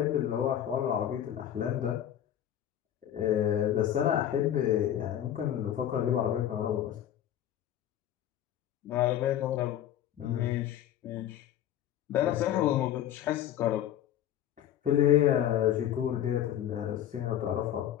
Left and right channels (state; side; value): quieter; right; 11.1 dB